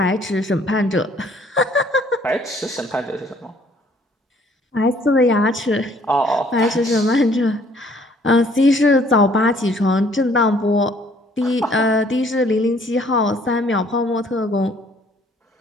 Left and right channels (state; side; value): normal; both; correlation 0.60